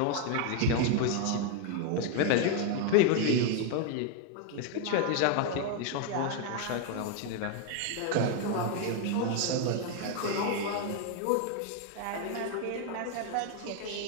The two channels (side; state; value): both; different; correlation 0.00